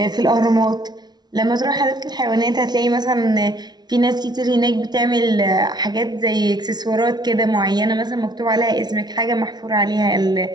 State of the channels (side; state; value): left; late; 0.20 ms